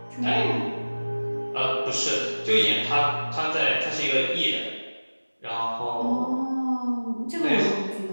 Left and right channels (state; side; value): inverted; both; correlation -1.00